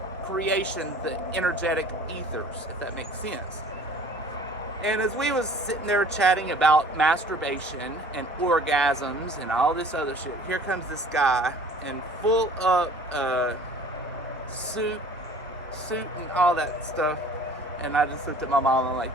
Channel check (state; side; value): normal; both; correlation 0.49